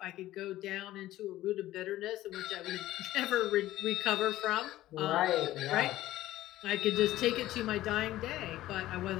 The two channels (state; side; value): quieter; right; 15.1 dB